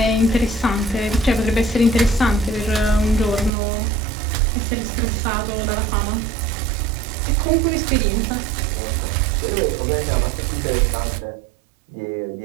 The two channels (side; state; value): left; drops out; at 3.5 s